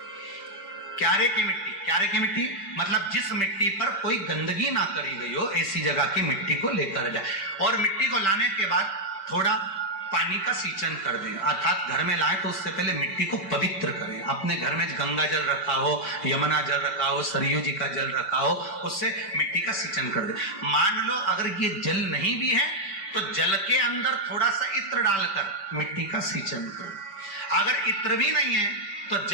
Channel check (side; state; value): right; late; 5.2 ms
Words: क्यारे की मिट्टी, क्यारे की मिट्टी मतलब जिस मिट्टी पर कोई गंदगी ना करी गई हो, ऐसी जगह की मिट्टी को लेकर जाए और मिट्टी को लाने के बाद थोड़ा पानी का सींचन कर दें, अर्थात घर में लाएं तो उससे पहले मिट्टी को पवित्र करें। अपने घर में गंगा जल रखा हो, यमुना जल रखा हो, सरयू जी का जल रखा हो, उससे मिट्टी का सींचन कर दें। मान लो अगर ये जल नहीं भी है तो जल के अंदर थोड़ा सा इत्र डालकर मिट्टी का सींचन कर। अगर इत्र भी नहीं है तो